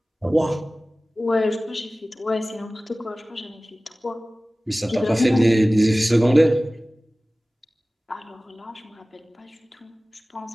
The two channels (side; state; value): both; normal; correlation 0.97